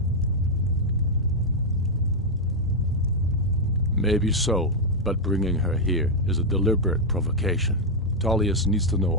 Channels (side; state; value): both; normal; correlation -0.01